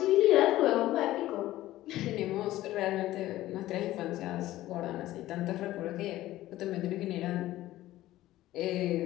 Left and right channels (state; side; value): quieter; right; 15.4 dB